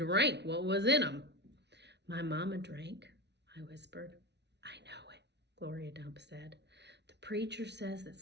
what was in them." "My mama drank," I whispered. "I know it," Gloria Dump said. "The preacher says that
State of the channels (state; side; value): late; left; 0.50 ms